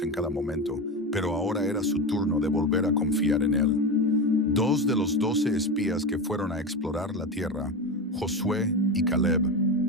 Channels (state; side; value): normal; both; correlation 0.20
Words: en cada momento, pero ahora era su turno de volver a confiar en Él. 2 de los 12 espías que fueron a explorar la tierra, Josué y Caleb,